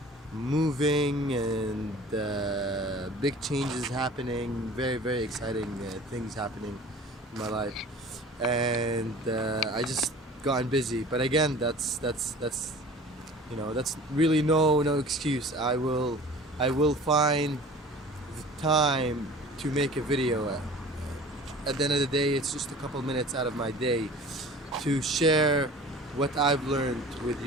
moving and big changes happening. Very, very exciting things happening in my life. And I just gotten busy. But again, that's really no excuse. I will find the time to make a video. At the end of the day, it's just a couple minutes out of my day to share what I've learned with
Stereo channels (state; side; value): normal; both; correlation 0.43